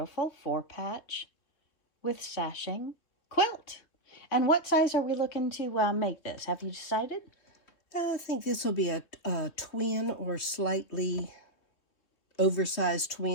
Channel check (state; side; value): late; right; 3.2 ms